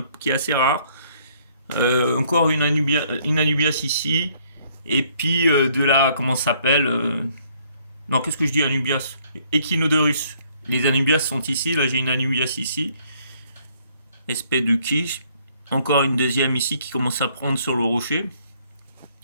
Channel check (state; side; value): inverted; both; correlation -0.65